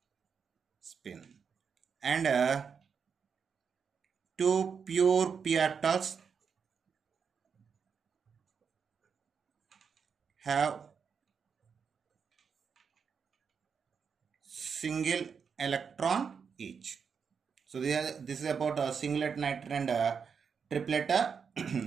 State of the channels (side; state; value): left; quieter; 6.3 dB